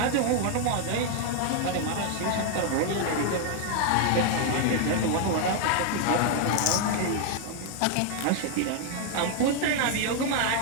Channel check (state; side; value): different; both; correlation 0.00